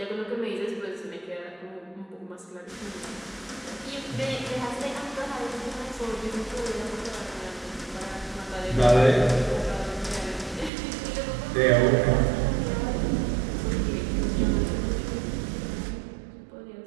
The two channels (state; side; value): drops out; left; at 10.7 s